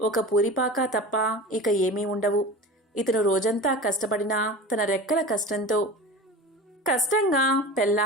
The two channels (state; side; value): normal; both; correlation 0.34